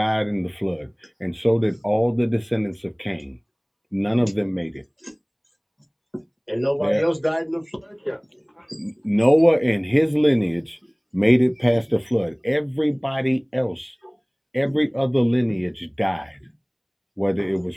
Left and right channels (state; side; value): identical; both; correlation 1.00